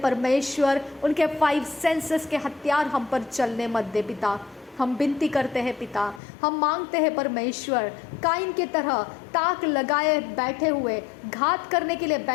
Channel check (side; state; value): right; drops out; at 6.2 s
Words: उनके 5 सेंसेस के हथियार हम पर चलने मत दे पिता। हम विनती करते हैं पिता, हम मांगते हैं परमेश्वर, काइन की तरह ताक लगाए बैठे हुए, घात करने के लिए